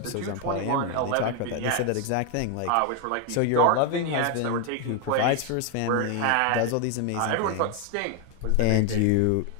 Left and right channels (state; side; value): different; both; correlation 0.01